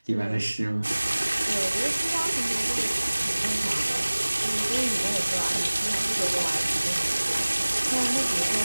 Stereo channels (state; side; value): inverted; both; correlation -1.00